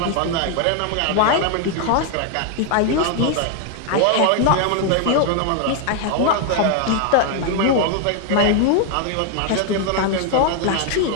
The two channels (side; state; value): both; different; correlation 0.00